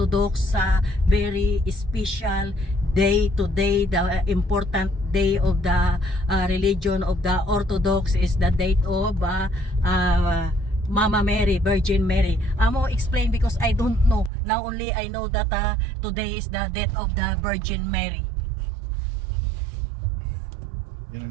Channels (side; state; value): left; drops out; at 14.3 s